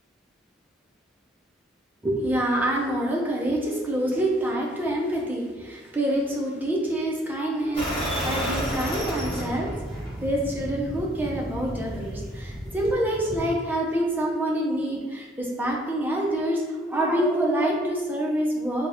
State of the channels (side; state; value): both; normal; correlation 0.63